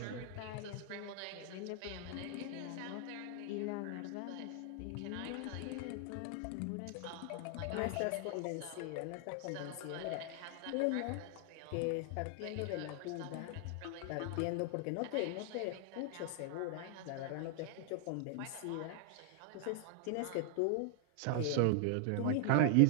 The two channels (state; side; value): different; both; correlation 0.00